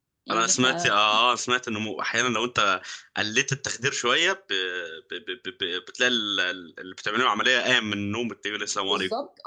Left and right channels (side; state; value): both; identical; correlation 1.00